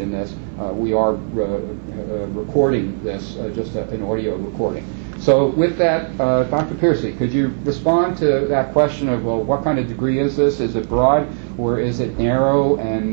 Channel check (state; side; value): silent; left; 61 dB below the other